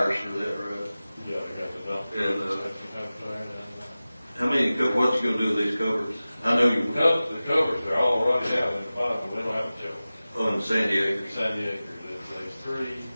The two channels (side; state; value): both; inverted; correlation -0.96